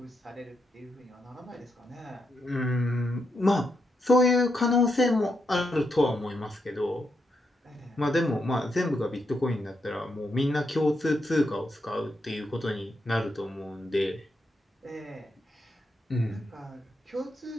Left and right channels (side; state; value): both; normal; correlation 0.82